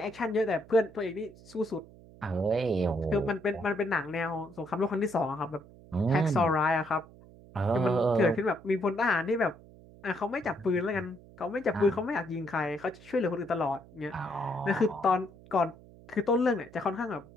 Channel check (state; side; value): noise; right; hum, 22 dB below the sound